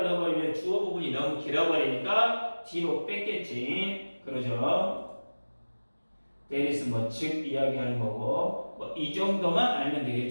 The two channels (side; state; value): both; inverted; correlation -1.00